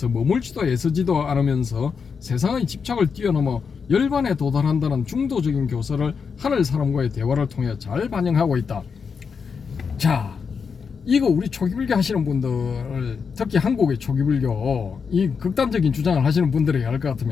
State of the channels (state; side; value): quieter; right; 5.9 dB